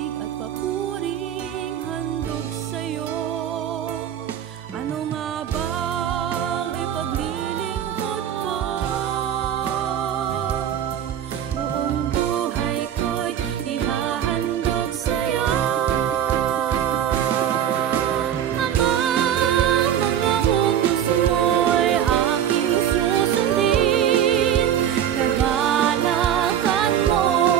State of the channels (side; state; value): left; quieter; 9.9 dB